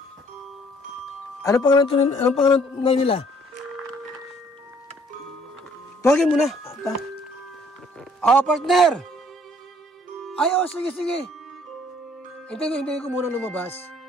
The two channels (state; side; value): normal; both; correlation 0.61